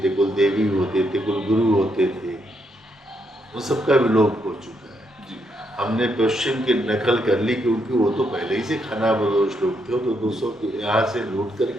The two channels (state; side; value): normal; both; correlation 0.78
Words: थे, कुल देवी होते थे, कुल गुरु होते थे। वो सबका विलोप हो चुका है। हमने पश्चिम की नकल कर ली क्योंकि वो तो पहले ही से खाना बदोश लोग थे। तो 200 यहाँ से लूट